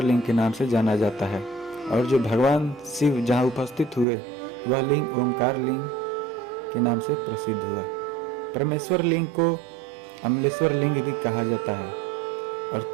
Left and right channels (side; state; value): left; drops out; at 4.0 s